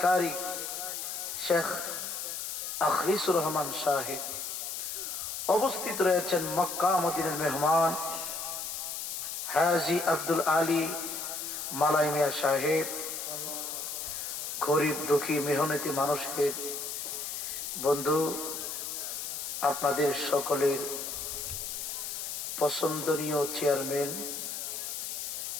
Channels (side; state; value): left; noise; hiss, 5 dB below the sound